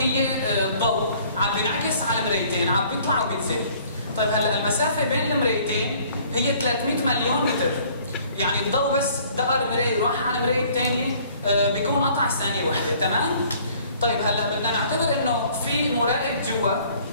الضوء عم بينعكس على مرايتين، عم بيطلع وبينزل. طيب هلا المسافه بين المرايتين هي 300 مليون متر، يعني الضوء بس دقر مرايه وراح على المرايه الثانيه بيكون قطع ثانيه واحده، تمام؟ طيب هلا بدنا نعتبر انه في مراقب جوا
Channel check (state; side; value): inverted; both; correlation -0.56